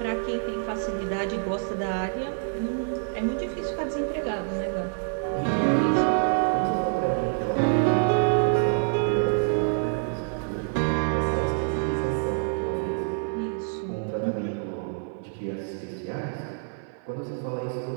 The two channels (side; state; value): left; silent; 56 dB below the other